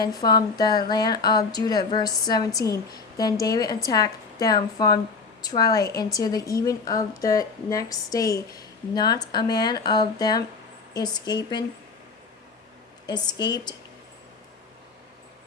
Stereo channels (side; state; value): right; quieter; 4.6 dB